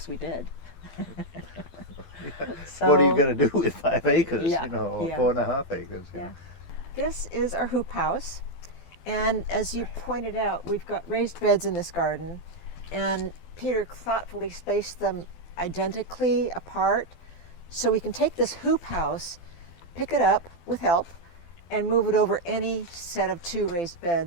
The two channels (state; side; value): late; right; 12 ms